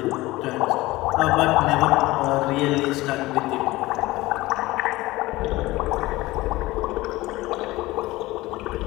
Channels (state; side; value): quieter; right; 19.0 dB